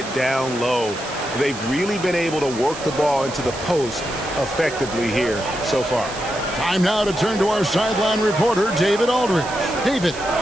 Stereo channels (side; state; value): right; noise; hiss, 13 dB below the sound